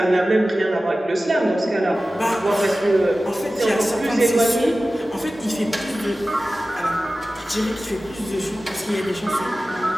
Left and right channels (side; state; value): both; normal; correlation 0.95